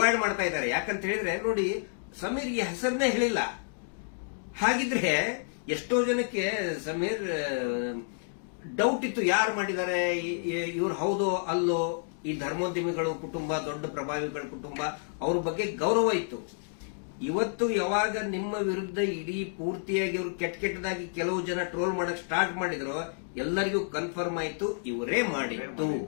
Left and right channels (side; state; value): right; silent; digital silence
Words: ಮಾಡ್ತಾ ಇದ್ದಾರೆ. ಯಾಕಂತ ಹೇಳಿದ್ರೆ ನೋಡಿ, ಸಮೀರ್ಗೆ ಹೆಸರನ್ನೇ ಹೇಳಿಲ್ಲ. ಹಾಗಿದ್ರೆ ಎಷ್ಟೋ ಜನಕ್ಕೆ ಸಮೀರ್ ಡೌಟ್ ಇತ್ತು, ಯಾರು ಮಾಡಿದ್ದಾರೆ, ಇವ್ರು ಹೌದೋ ಅಲ್ಲೋ. ಈ ಧರ್ಮೋದ್ಯಮಿಗಳು ಕುಟುಂಬ, ದೊಡ್ಡ ಪ್ರಭಾವಿಗಳ ಕುಟುಂಬ, ಅವ್ರ ಬಗ್ಗೆ ಗೌರವ ಇತ್ತು. ಇವತ್ತು ಯಾವಾಗ ನಿಮ್ಮ ವಿರುದ್ಧ ಇಡೀ ಪೂರ್ತಿಯಾಗಿ ಇವರು ಕೆಟ್ಟದಾಗಿ ಕೆಲವು ಜನ ಟ್ರೋಲ್ ಮಾಡಕ್ ಸ್ಟಾರ್ಟ್ ಮಾಡಿದ್ರು, ಎಲ್ಲರಿಗೂ ಕನ್ಫರ್ಮ್ ಆಯ್ತು ಇವರೇ ಮಾಡಿದ್ದು,